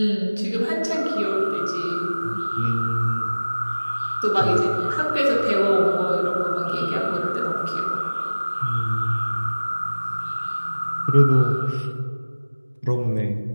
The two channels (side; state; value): both; inverted; correlation -1.00